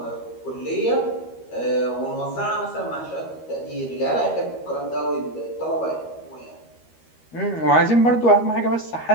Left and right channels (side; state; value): right; late; 13 ms